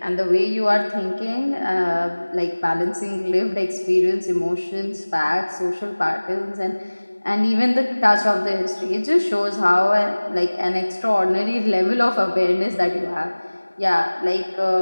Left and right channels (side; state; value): both; inverted; correlation -1.00